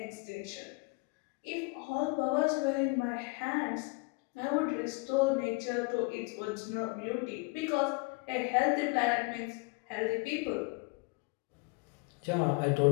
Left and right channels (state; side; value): quieter; right; 29.0 dB